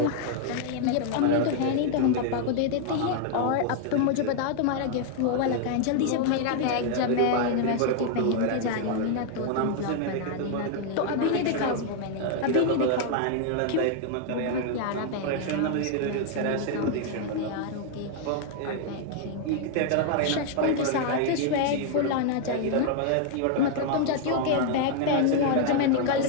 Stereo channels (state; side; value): different; both; correlation 0.00